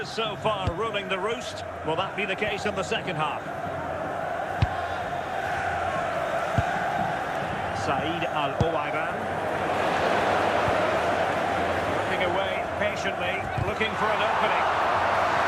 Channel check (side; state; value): both; identical; correlation 1.00